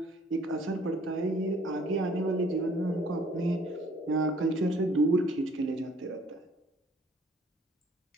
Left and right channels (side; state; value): both; normal; correlation 0.58